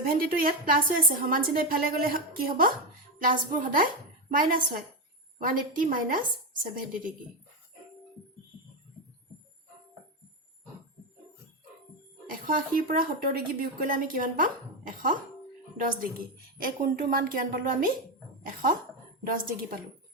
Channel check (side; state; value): both; normal; correlation 0.10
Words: টো ইয়াত প্লাস হৈ আছে সমান চিহ্ন ইফালে গলে কি হ'ব প্লাসবোৰ সদায় মাইনাস হয় 180 minus 70 degree 180 পৰা 70 ডিগ্ৰী বিয়োগ কৰিলে আমি কিমান পাম 110 ডিগ্ৰী এই কোণটোৰ মান কিমান পালো আমি 110 ডিগ্ৰী পালো